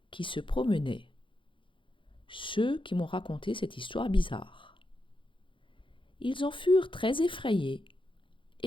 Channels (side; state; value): right; late; 0.25 ms